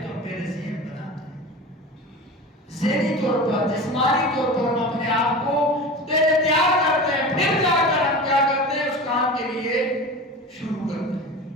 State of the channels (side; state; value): both; normal; correlation 0.32